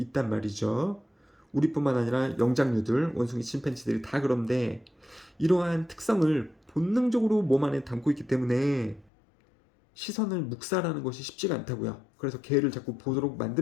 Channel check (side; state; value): right; drops out; at 9.1 s